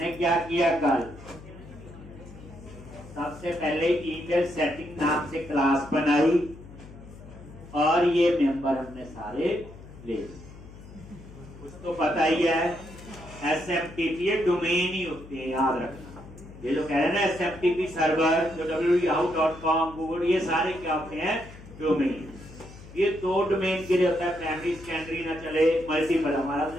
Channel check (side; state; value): left; noise; hum, 17 dB below the sound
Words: क्या किया कल, सबसे पहले ईमेल सेटिंग नाम से क्लास बनाई और ये मेंबर हमने सारे ले लिए। कुछ तो पता ही है, SMTP डोमेन ही होते हैं, याद रखना। ये जो कह रहे हैं ना SMTP सर्वर, जो www.yahoo.com, गूगल, ये सारे क्या होते हैं, डोमेन। ये दो डोमेन के लिए होता है, प्राइमरी सेकेंडरी ना चले, मल्टीपल। हमारा